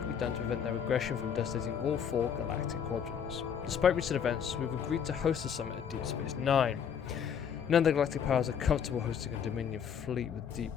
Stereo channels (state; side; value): quieter; right; 7.7 dB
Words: be done to prevent their aggression from devastating all 4 galactic quadrants. Despite recent events, we've agreed to host the summit at Deep Space Nine. None of the galactic powers are comfortable hosting a Dominion fleet deep